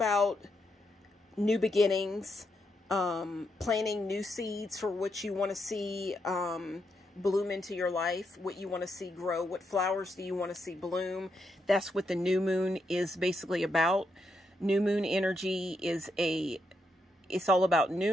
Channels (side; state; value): both; normal; correlation 0.81